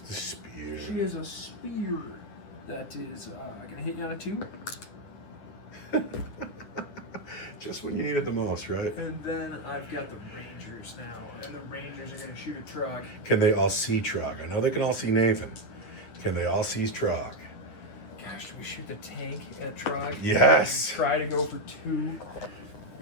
spear. She has a spear that is going to hit you on a 2. Just when you need it the most, right? And then I've got the Rangers now. And the Rangers are going to shoot a Trog. Can they all see Trog? I know they can all see Nathan. Can they all see Trog? Gosh, do we shoot the tank at Trog? Yes. And try to go for 2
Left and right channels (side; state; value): right; late; 9.8 ms